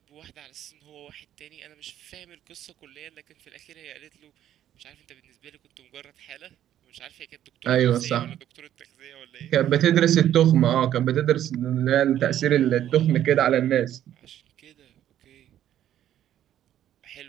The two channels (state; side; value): quieter; left; 11.4 dB